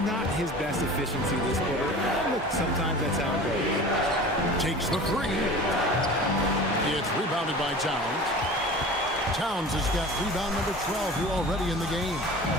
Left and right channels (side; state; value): both; normal; correlation 0.38